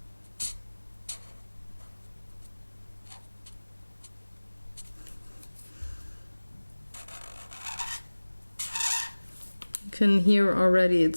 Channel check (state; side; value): inverted; both; correlation -1.00